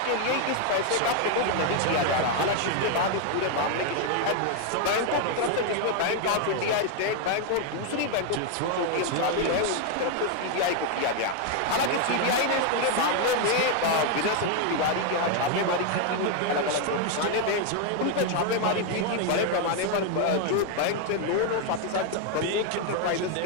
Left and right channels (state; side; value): different; both; correlation 0.01